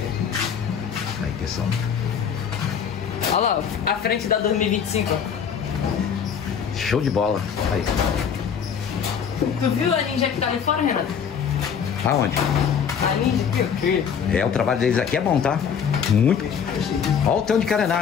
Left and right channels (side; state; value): right; quieter; 7.4 dB